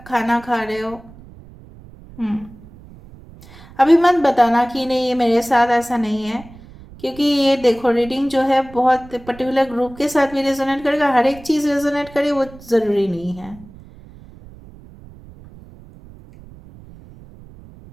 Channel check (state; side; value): noise; right; rumble, 20 dB below the sound